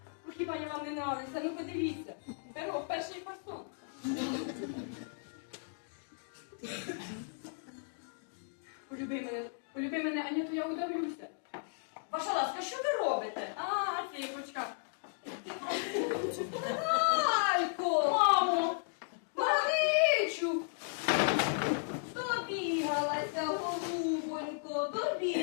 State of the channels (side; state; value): right; silent; digital silence